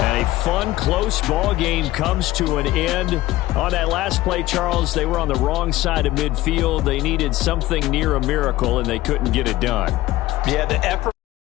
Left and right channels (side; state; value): right; quieter; 16.6 dB